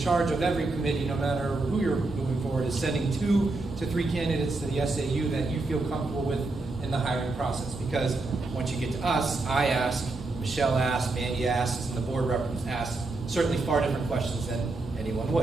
of every committee, no matter who you're moving forward, is sending 2 to 3 candidates to the SAU that you feel comfortable with in the hiring process. Because once you get to us, I ask, Michelle asks, Mandy asks, and the board representatives ask certainly far different questions than anyone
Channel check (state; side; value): quieter; left; 3.3 dB